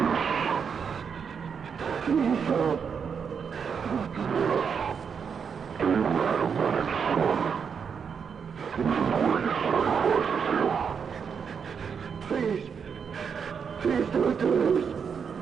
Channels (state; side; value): quieter; left; 6.6 dB